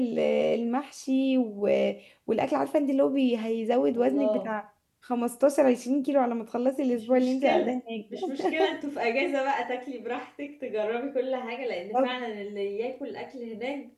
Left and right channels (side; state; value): both; identical; correlation 1.00